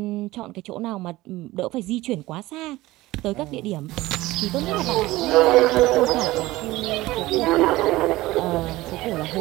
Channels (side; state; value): left; quieter; 18.3 dB